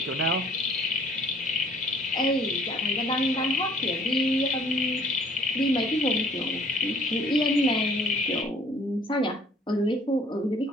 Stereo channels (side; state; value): both; normal; correlation 0.56